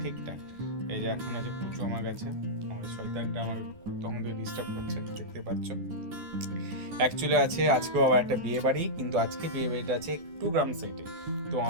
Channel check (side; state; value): left; late; 12 ms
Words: ঠিকঠাক। এই যে এখন আছে পুচু আমার কাছে, আমার শয়তানটা আমাকে তখন থেকে ডিস্টার্ব করছে, দেখতে পাচ্ছ। অ্যাকচুয়ালি আছে আজকেও আবার একটা বিয়ে বাড়ি, কিন্তু আজকে বিয়ে বাড়িটা আছে একটু গ্রাম সাইডে। তো